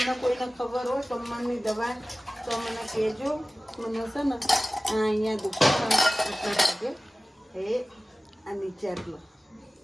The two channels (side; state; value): both; normal; correlation 0.97